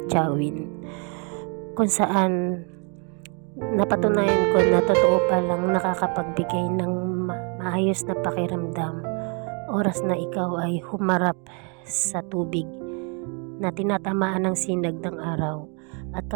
kung saan napatunayan ko na totoo palang nakakapagbigay ng maayos na pakiramdam oras na ikaw ay humarap sa tubig na tinatamaan ng sinag ng araw. At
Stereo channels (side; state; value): left; quieter; 36.5 dB